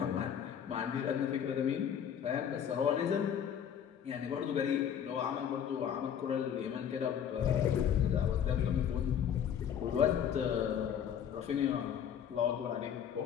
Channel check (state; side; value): quieter; right; 8.7 dB